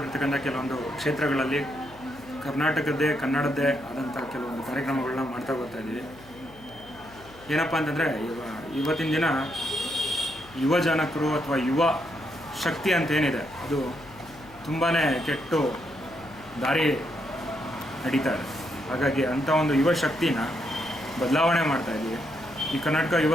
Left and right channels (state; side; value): noise; left; hum, 22 dB below the sound